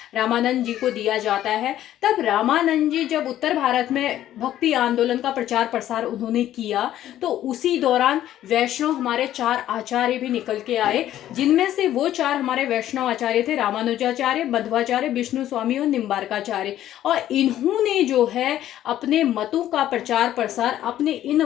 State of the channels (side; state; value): right; quieter; 12.4 dB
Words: रामानंद जी को दिया जाता है। तब रामानंद जी जब उत्तर भारत में भक्ति आंदोलन का प्रचार प्रसार उन्होंने किया तो उसी दौरान वैष्णव हमारे 4 आचार्य भी निकल के आए, जिनमें से वो 4 हमारे वैष्णव आचार्य थे रामानुजाचार्य, मध्वाचार्य, विष्णु स्वामी और निम्बार्काचार्य। और इन्होंने जो है अपने मतों का प्रचार प्रसार अपने इन